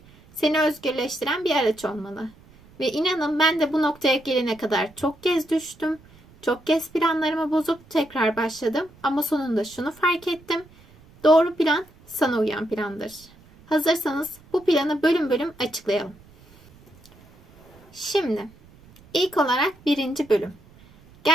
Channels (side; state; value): right; noise; rumble, 26 dB below the sound